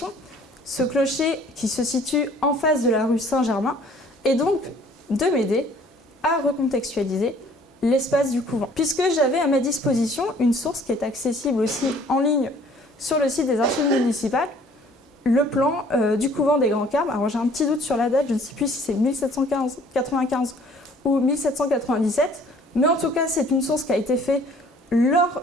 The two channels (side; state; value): both; normal; correlation 0.56